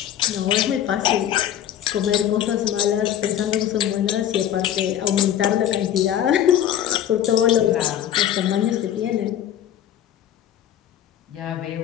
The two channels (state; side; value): quieter; right; 10.8 dB